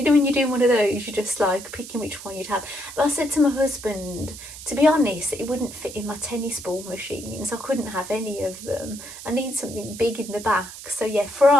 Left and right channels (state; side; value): noise; right; hiss, 13 dB below the sound